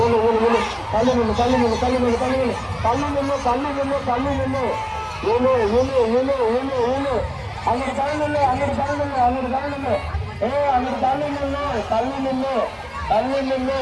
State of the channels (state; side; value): identical; both; correlation 1.00